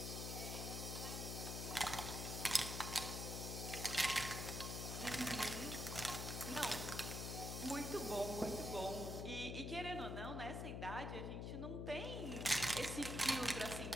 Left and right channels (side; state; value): left; noise; hum, 3 dB below the sound